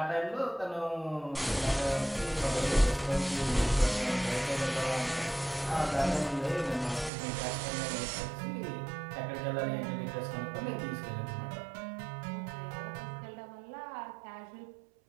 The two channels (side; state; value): left; drops out; at 7.1 s